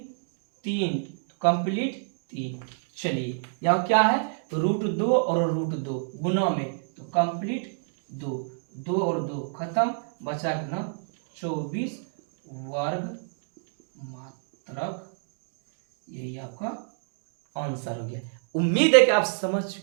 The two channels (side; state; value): left; silent; digital silence